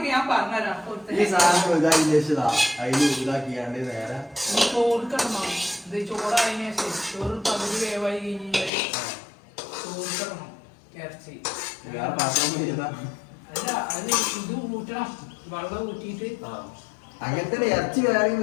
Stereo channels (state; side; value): drops out; right; at 8.7 s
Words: ഞാൻ പറഞ്ഞുതരാം. ഈ സാധനം ഇതാക്കി വെച്ചതാ, അതില് ഇതാക്കിയാണ്ട് നേരെ ചോറ് കിടണം. ഇത് ചോറായതിനു ശേഷം ചോറ് പകുതി വേവായി കഴിഞ്ഞാൽ ചോറ് കിടണം ഇറച്ചി. വേറെ പാത്രം ചെയ്താ അല്ല, അത് ഇത് ഊറ്റണം. വെള്ളം ഊറ്റിയിട്ട് അങ്ങനത്തെ ഇറച്ചി വേറെ